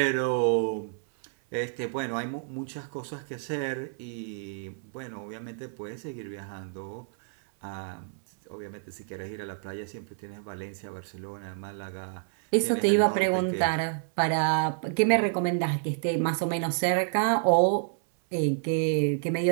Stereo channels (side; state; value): left; silent; 59 dB below the other